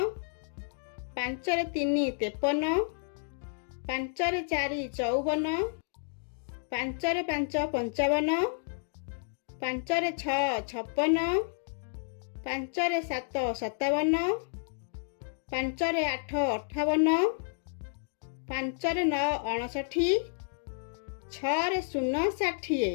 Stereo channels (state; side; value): silent; right; digital silence